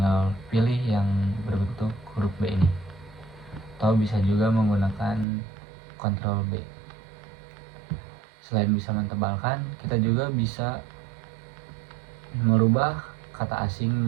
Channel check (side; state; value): left; drops out; at 5.2 s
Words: pilih yang berbentuk huruf B ini, atau bisa juga menggunakan Ctrl B. Selain bisa mentebalkan, kita juga bisa merubah kata asing